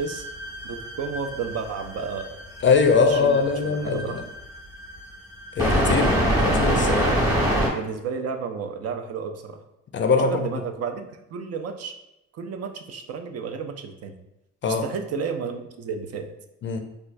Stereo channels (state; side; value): normal; both; correlation 0.19